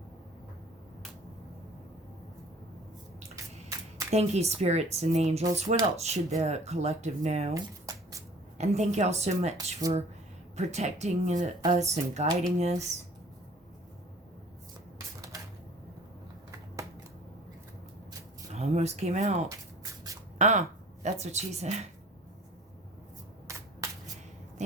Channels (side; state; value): both; normal; correlation 0.50